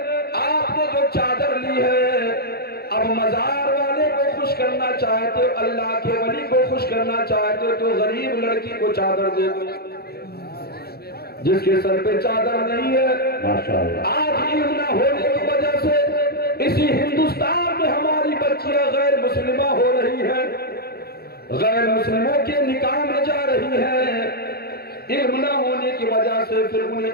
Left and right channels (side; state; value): right; late; 0.46 ms